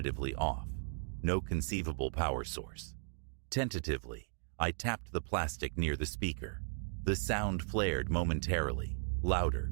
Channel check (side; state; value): left; silent; digital silence